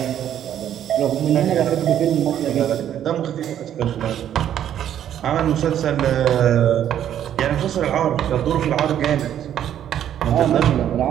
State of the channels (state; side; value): quieter; left; 10.5 dB